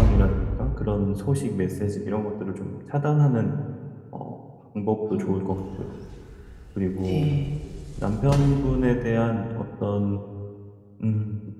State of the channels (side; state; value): both; identical; correlation 1.00